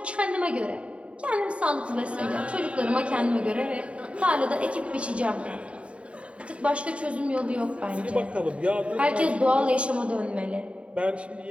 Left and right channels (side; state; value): left; late; 0.061 ms